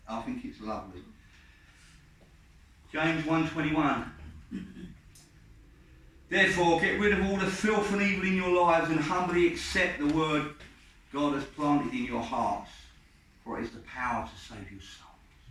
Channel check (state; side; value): identical; both; correlation 1.00